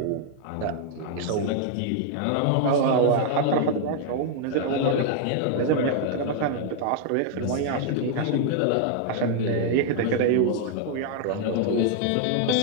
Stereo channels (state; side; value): different; both; correlation 0.00